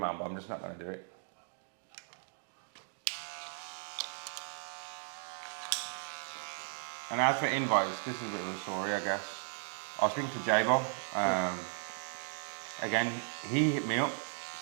but I'm just not going to do it. And as for invites, this is a bit of a story, I guess. I was speaking to J-Bo. Again, he hit me up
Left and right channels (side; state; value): left; silent; 54 dB below the other